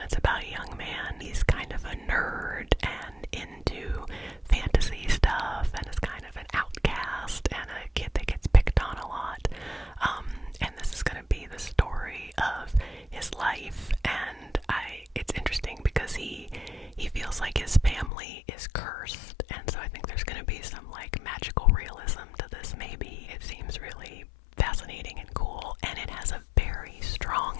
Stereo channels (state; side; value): drops out; right; at 18.1 s